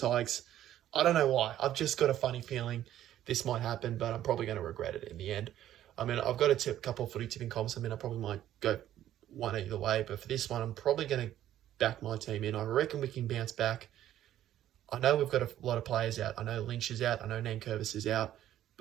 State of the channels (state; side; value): quieter; left; 12.2 dB